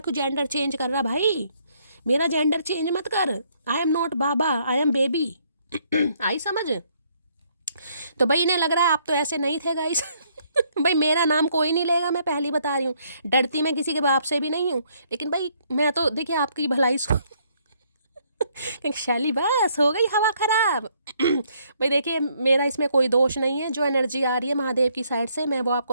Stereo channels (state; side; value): inverted; both; correlation -0.68